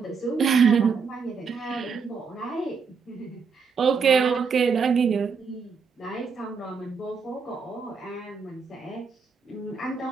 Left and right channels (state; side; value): quieter; left; 5.5 dB